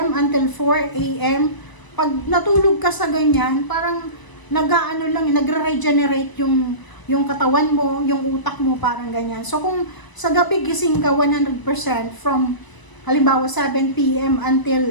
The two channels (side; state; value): right; late; 1.0 ms